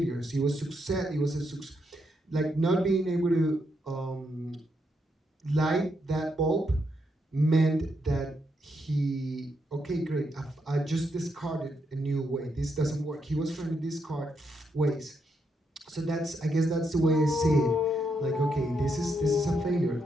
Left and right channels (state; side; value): normal; both; correlation 0.79